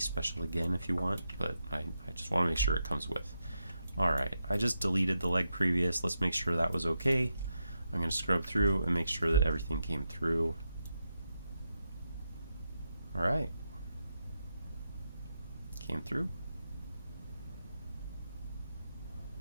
special again if you want, but I just want to make sure it comes with. Alright, I just deleted the leg previous. Let's make sure that was okay. I'm going to scrub through and make sure that everything came through. Alright. Came through.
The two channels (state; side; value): inverted; both; correlation -0.85